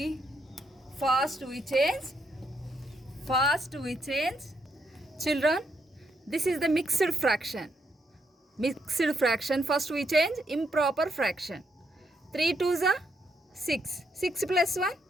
First we change. Children, this is the mixed fraction. First we change improper fraction. 3 2s are 6. 6 plus 1,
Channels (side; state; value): both; normal; correlation 0.77